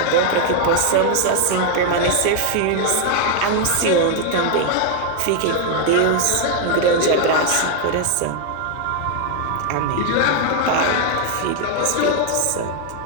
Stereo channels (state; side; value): different; both; correlation 0.01